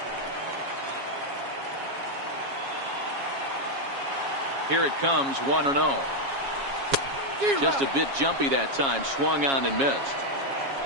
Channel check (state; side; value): late; left; 7.3 ms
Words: Here it comes, 1-0. Just a bit jumpy that time. Swung on and missed.